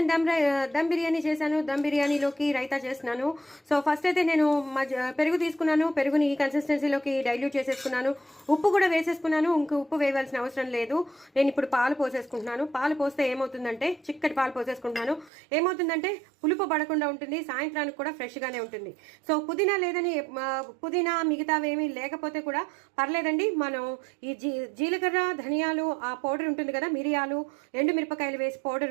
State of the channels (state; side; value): drops out; left; at 15.3 s